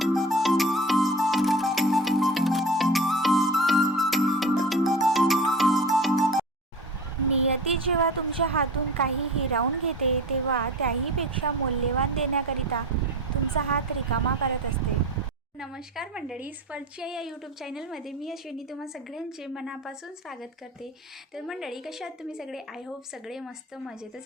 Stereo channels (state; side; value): normal; both; correlation 0.35